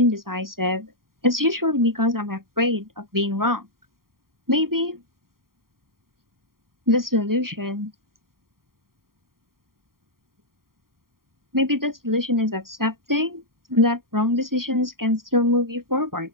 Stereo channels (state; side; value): late; left; 0.92 ms